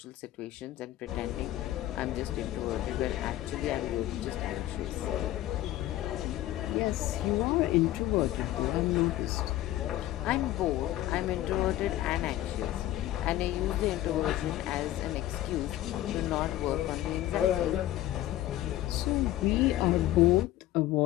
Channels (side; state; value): right; quieter; 14.6 dB